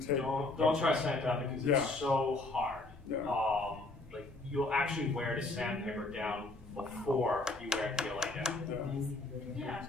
take. Don't try sandpaper because it's so hard. Yeah. Like, you'll actually wear the sandpaper down before you wear PLA down. Yeah.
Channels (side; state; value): right; quieter; 3.0 dB